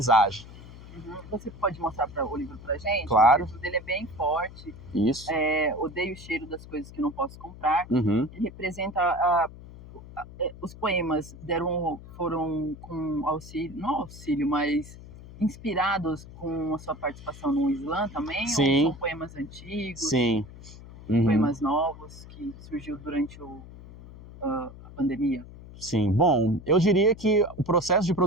Você pode mostrar o livro pra gente? Claro. O livro dele é bem forte. Isso. Odeio o cheiro das coisas que não posso comprar. Uhum. Ele representa os poemas foram com auxílio, não auxílio, mas inspirados com a sua participação no Slam também? Sim. Ou são poemas antigos? Sim. Uhum. Poemas novos que surgiu durante a pandemia? Sim, bom, eu diria que o processo de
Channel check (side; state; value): left; noise; hum, 16 dB below the sound